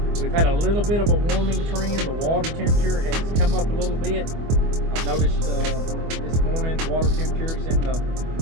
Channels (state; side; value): late; left; 24 ms